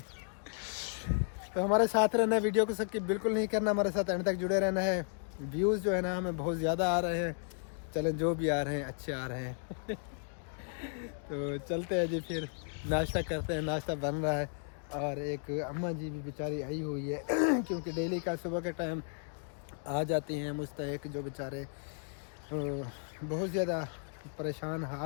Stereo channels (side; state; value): right; silent; 55 dB below the other